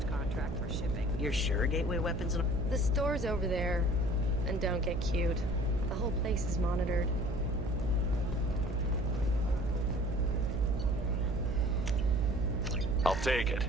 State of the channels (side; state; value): right; noise; hum, 5 dB below the sound